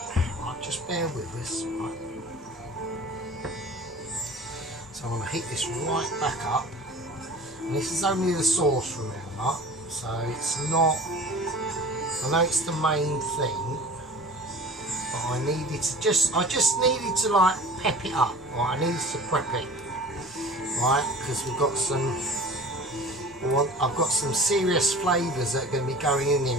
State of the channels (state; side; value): normal; both; correlation 0.40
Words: Right, just bear with us, right? So I'm going to heat this right back up. And this is only the sauce, remember, so it's not, I know it's the main thing, but I just needed to like pep it up, right? I needed to prep it, right? Because we've got I've got some serious flavours that are going to be going in